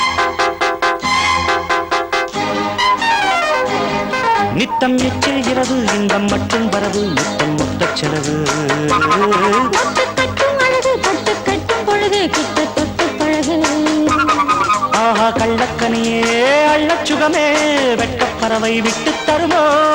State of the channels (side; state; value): both; identical; correlation 1.00